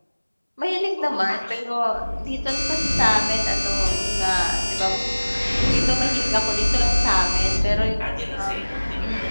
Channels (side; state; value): both; inverted; correlation -1.00